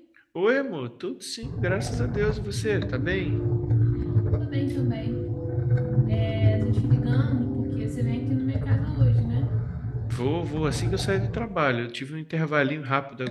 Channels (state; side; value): identical; both; correlation 1.00